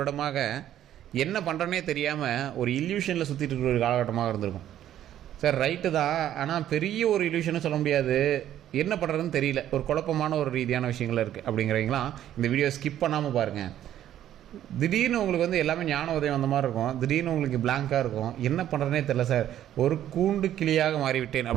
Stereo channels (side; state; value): left; quieter; 11.6 dB